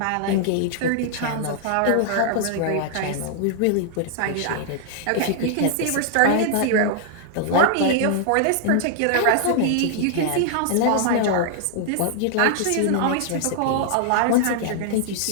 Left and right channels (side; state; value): both; different; correlation -0.01